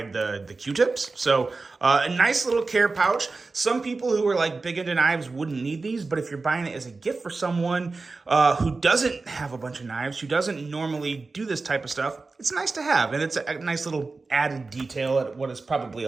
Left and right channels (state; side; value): quieter; left; 3.8 dB